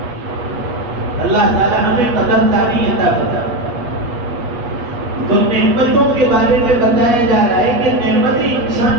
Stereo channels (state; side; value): late; left; 8.2 ms